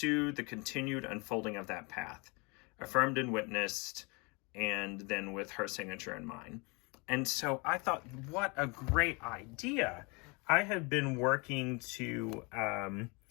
the continued unfolding of that path, affirmed and witnessed, and then with her signature in mind. And so I thought, what a great idea. I have been working to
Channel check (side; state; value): right; quieter; 29.4 dB